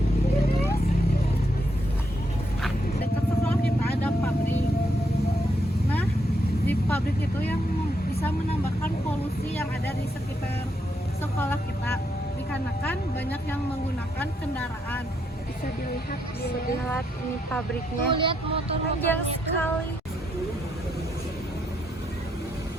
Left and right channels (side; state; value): both; normal; correlation 0.78